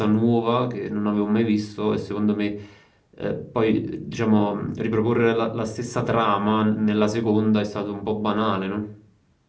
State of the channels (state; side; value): identical; both; correlation 1.00